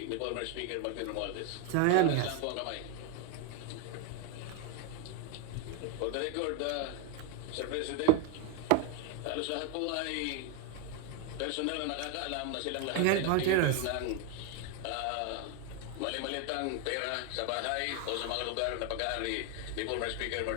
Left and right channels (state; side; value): different; both; correlation 0.01